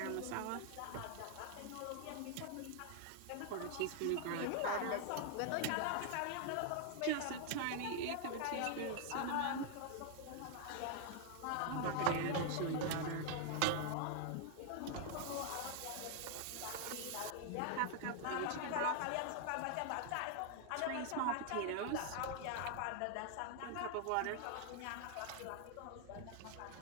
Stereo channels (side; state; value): both; different; correlation 0.00